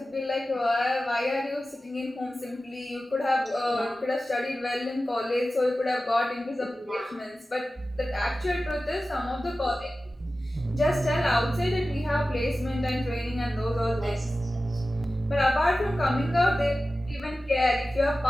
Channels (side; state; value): both; normal; correlation 0.95